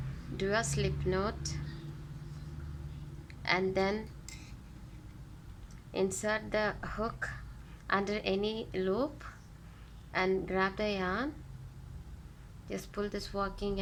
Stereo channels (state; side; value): identical; both; correlation 1.00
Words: do a slip knot, and then insert the hook under any loop and grab the yarn. Just pull this working